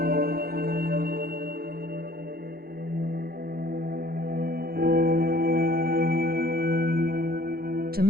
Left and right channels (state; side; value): late; left; 0.44 ms